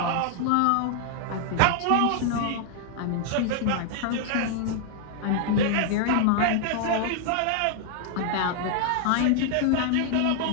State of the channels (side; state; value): both; different; correlation 0.00